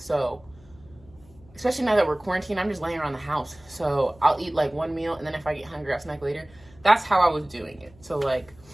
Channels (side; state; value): left; noise; hum, 26 dB below the sound